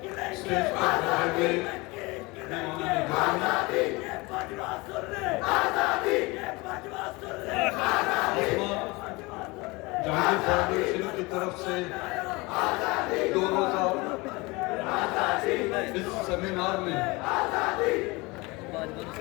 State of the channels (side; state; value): right; quieter; 24.3 dB